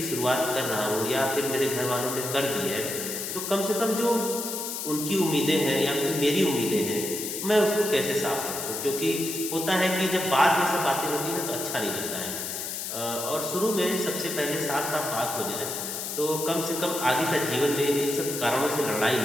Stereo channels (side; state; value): left; noise; hiss, 5 dB below the sound